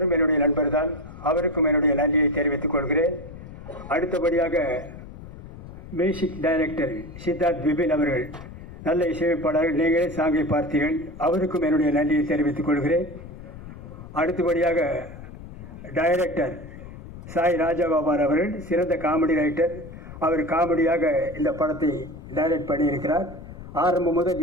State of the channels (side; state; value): left; noise; rumble, 14 dB below the sound